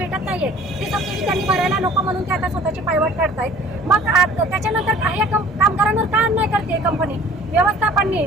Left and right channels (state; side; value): normal; both; correlation 0.49